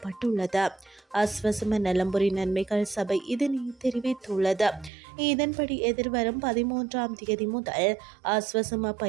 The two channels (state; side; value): drops out; left; at 4.9 s